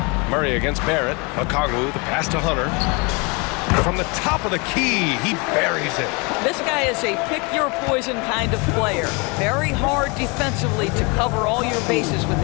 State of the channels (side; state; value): right; quieter; 29.8 dB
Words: Murray against Barrett. Okongwu, the pass to Hunter. From the top of the key, he buries it. This guy is a pick-your-poison kind of player. Very hard defensively to cover all your bases with